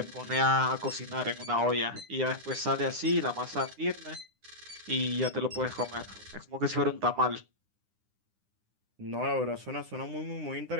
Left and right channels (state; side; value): late; left; 9.8 ms